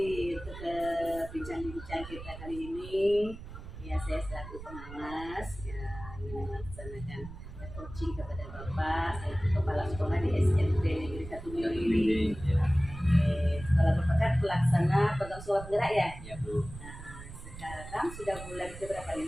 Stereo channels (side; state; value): right; noise; rumble, 13 dB below the sound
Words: untuk bincang-bincang kita kali ini, ya saya selaku pengawas ya ingin melaksanakan coaching kepada Bapak selaku kepala sekolah di SMP Negeri 1 Mili. ya, Sekolah Bapak kan pelaksana program sekolah penggerak ya. ya Bu. Nah, sekarang sudah bulan berapa? 5